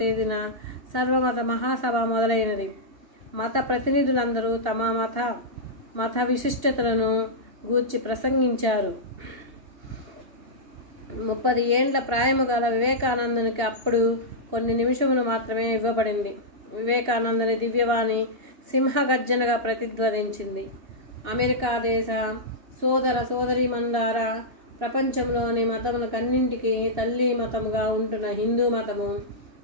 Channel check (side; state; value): left; late; 2.8 ms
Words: తేదీన సర్వమత మహాసభ మొదలైనది. మత ప్రతినిధులందరూ తమ మత విశిష్టతలను గూర్చి ప్రసంగించారు. 30 ఏండ్ల ప్రాయము గల వివేకానందునికి అప్పుడు కొన్ని నిమిషములు మాత్రమే ఇవ్వబడింది. వివేకానందుని దివ్యవాణి సింహగర్జనగా ప్రతిధ్వనించింది. అమెరికా దేశ సోదర సోదరీమణులారా, ప్రపంచంలోని మతములకన్నింటికీ తల్లి మతముగా ఉంటున్న హిందూ మతము